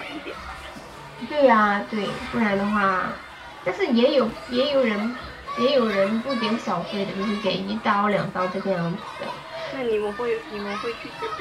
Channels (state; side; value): identical; both; correlation 1.00